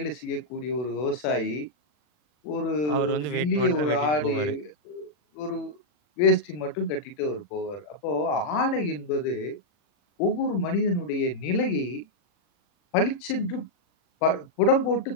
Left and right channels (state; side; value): late; right; 40 ms